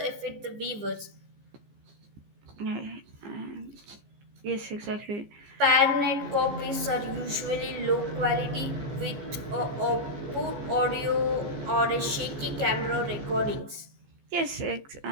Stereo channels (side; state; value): left; late; 15 ms